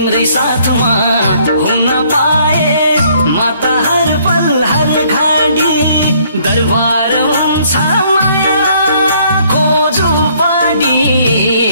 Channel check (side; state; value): both; inverted; correlation -0.64